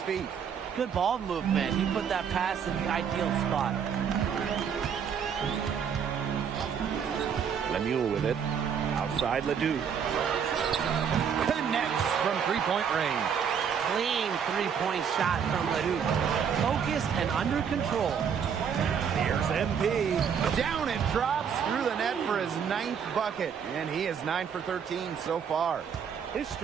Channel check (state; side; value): quieter; left; 7.4 dB